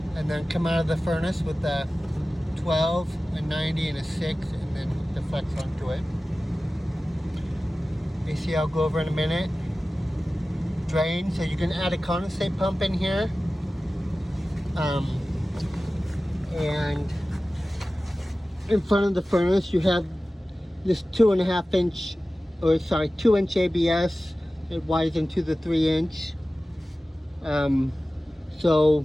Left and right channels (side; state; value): both; normal; correlation 0.96